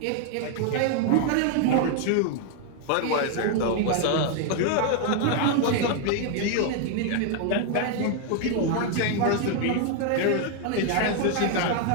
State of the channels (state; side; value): different; both; correlation 0.00